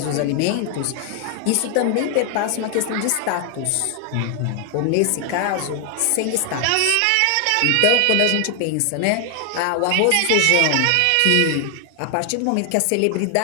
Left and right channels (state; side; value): different; both; correlation 0.00